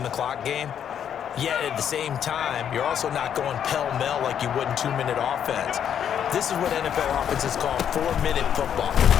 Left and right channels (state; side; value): quieter; right; 8.9 dB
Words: the clock game. Yet at the same time, you're also not going pell-mell like you would in 2-minute offense. This is what NFL offenses call 4-minute football.